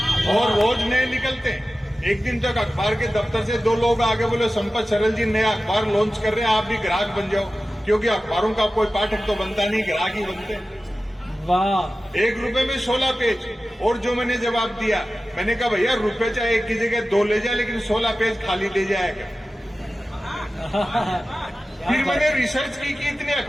और रोज नए निकलते हैं। एक दिन तक अखबार के दफ्तर से 2 लोग आगे बोले, संपत सरल जी नया अखबार लॉन्च कर रहे हैं, आप भी ग्राहक बन जाओ। क्योंकि अखबारों का कोई पाठक तो बनता नहीं, ग्राहक ही बनते हैं। वाह। 1 रुपए में 16 पेज। और जो मैंने जवाब दिया, मैंने कहा भैया रुपए चाहे 1 की जगह 2 ले जाए, लेकिन 16 पेज खाली दे जाएगा। फिर मैंने रिसर्च की कि इतने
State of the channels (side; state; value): both; normal; correlation 0.95